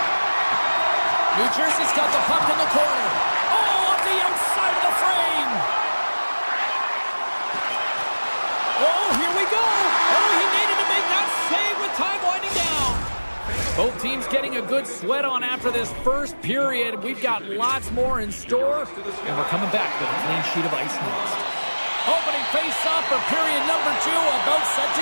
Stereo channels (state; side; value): inverted; both; correlation -1.00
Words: New Jersey's got the puck in the corner. Oh, off the outside of the frame. Oh, here we go. Oh, he needed to make that save with time winding down. Both teams getting a good sweat on after this first period. We've got lots more in store, and we're coming back with a clean sheet of ice next. Opening face-off for period number 2, about set